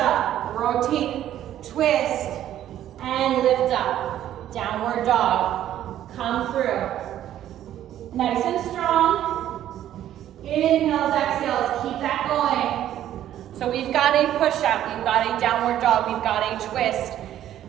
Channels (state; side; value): quieter; left; 11.8 dB